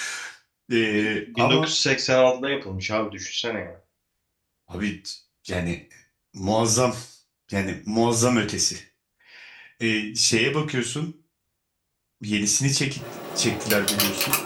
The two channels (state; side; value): identical; both; correlation 1.00